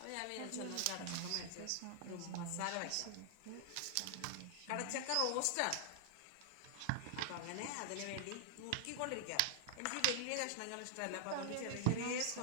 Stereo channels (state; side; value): different; both; correlation -0.01